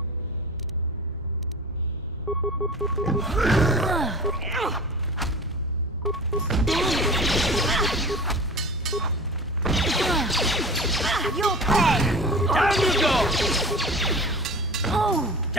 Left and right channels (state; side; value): normal; both; correlation 0.36